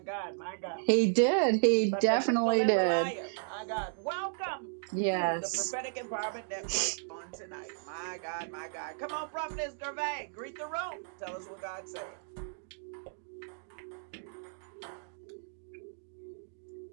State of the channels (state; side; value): silent; left; digital silence